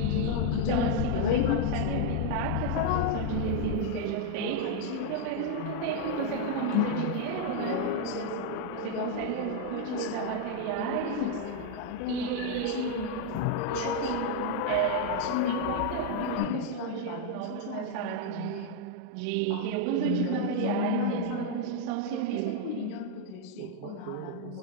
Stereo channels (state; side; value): different; both; correlation 0.00